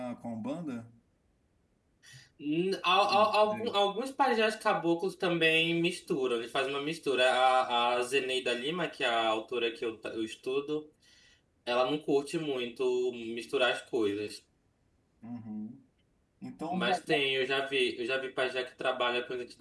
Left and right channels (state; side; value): identical; both; correlation 1.00